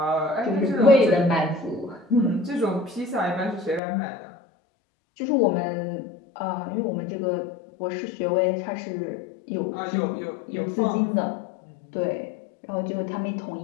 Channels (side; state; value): right; drops out; at 3.8 s